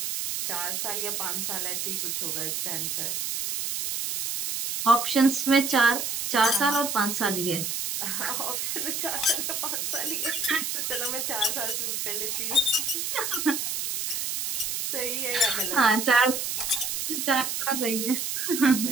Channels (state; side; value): noise; right; hiss, 2 dB below the sound